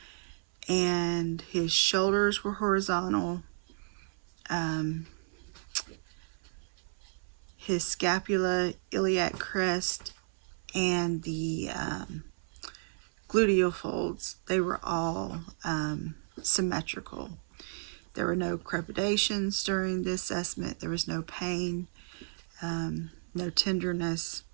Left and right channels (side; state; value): left; silent; 56 dB below the other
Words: and his shoulders were horizontal. His scapula, iliac crest, and the gluteal folds, they were all symmetrical. There were no crepidations during the assessment. There was no pain, no tenderness.